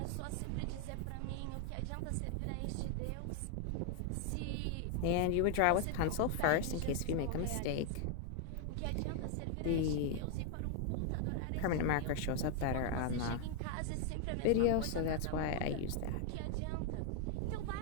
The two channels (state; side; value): different; both; correlation 0.00